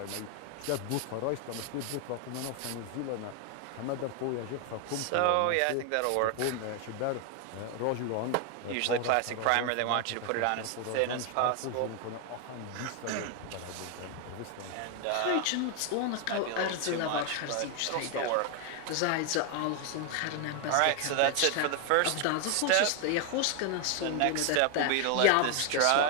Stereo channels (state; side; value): different; both; correlation 0.01